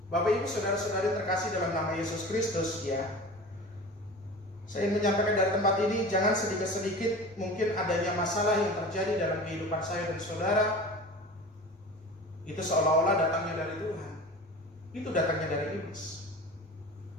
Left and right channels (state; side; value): normal; both; correlation 0.36